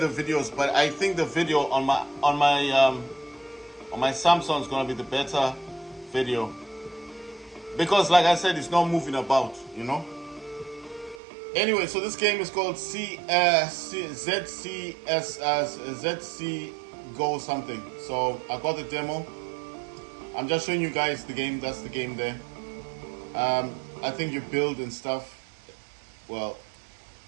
videos. But I think the video on my Samsung is gonna be the better video because, like I said, it's not moving about, you know. Anyway, so this game is called ZC Go something. So I got the demo. I'm just showing you guys the game. That's the game there. I think you build and stuff. Well,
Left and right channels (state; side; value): drops out; left; at 11.2 s